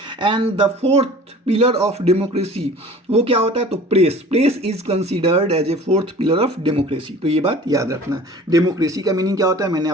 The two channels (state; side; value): normal; both; correlation 0.45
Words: and the 4th pillar of democracy वो क्या होता है, तो press is considered as a 4th pillar of democracy. तो ये बात याद रखना। डेमोक्रेसी का मीनिंग क्या होता है मैंने